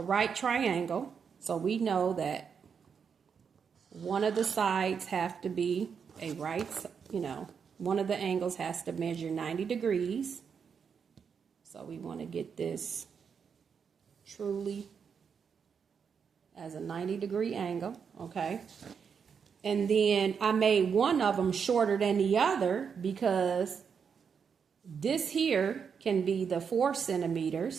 right triangle. So we know that one of the sides have to be a right, one of the angles has to measure 90 degrees. So we want to get this truly as a 90-degree angle, okay? And then I made one of them shorter than the other because this here can be the 4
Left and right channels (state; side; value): quieter; left; 6.6 dB